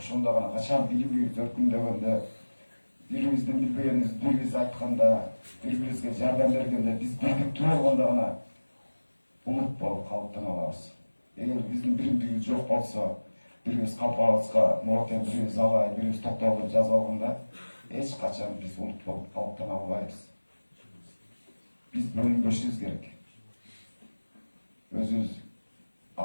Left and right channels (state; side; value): inverted; both; correlation -1.00